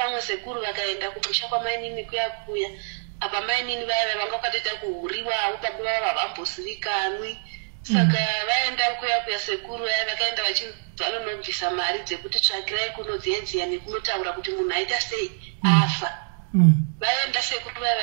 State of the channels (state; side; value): silent; left; digital silence